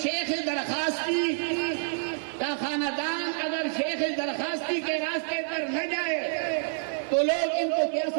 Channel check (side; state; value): left; silent; 56 dB below the other